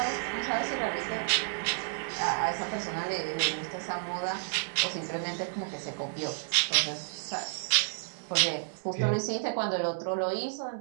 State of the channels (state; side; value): silent; left; digital silence